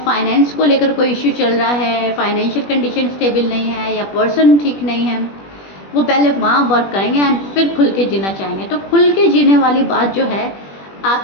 फाइनेंस को लेकर कोई इश्यू चल रहा है, फाइनेंशियल कंडीशन स्टेबल नहीं है, या पर्सन ठीक नहीं है, वो पहले वहाँ वर्क करेंगे एंड फिर खुल के जीना चाहेंगे। तो खुल के जीने वाली बात जो है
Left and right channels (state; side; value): late; right; 21 ms